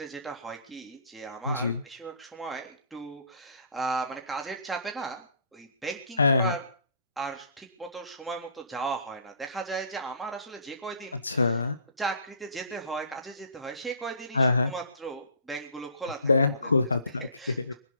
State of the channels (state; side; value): inverted; both; correlation -0.52